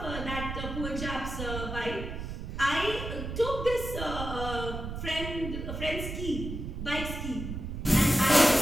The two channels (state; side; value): noise; right; rumble, 6 dB below the sound